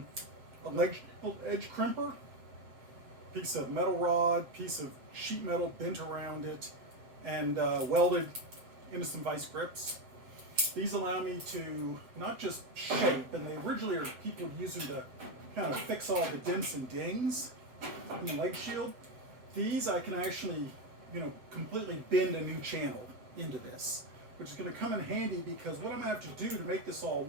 leg edge crimper, piece of metal rod, piece of sheet metal bent around it, and welded into some vice grips. These allow me to not just shape, and they originally are people would use them to kind of fix all the dents and dings in the leg shield. These I can actually, completely bend a new channel into this, which is going to come in handy because what I'm going to have to do to make this all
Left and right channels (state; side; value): late; left; 8.0 ms